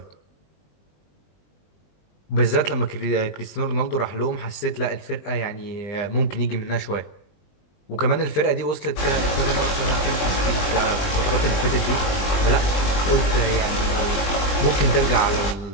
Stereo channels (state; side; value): late; right; 20 ms